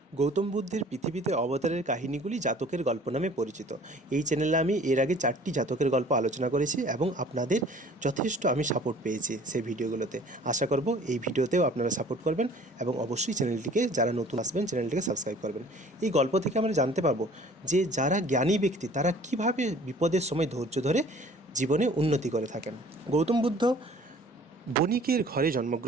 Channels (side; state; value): both; normal; correlation 0.51